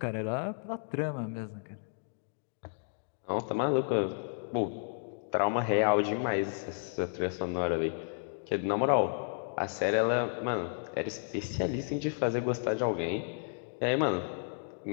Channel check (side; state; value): right; silent; 56 dB below the other